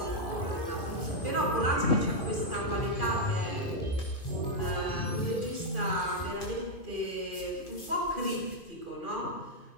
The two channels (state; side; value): late; right; 2.5 ms